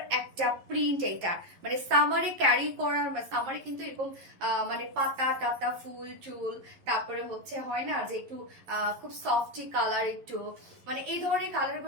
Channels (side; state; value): left; late; 11 ms